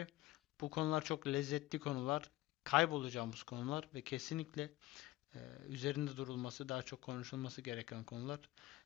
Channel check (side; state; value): right; quieter; 17.2 dB